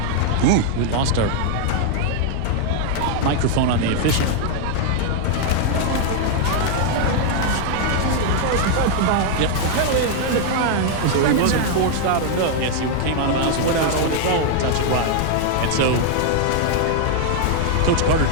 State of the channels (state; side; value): different; both; correlation 0.00